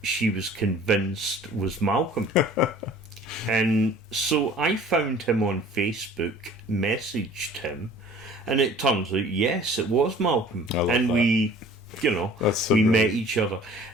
she was convinced was Malcolm. And so I found him on Facebook, messaged him, and it turns out, yes, it was Malcolm. And we, you know, we met each other.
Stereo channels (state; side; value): normal; both; correlation 0.49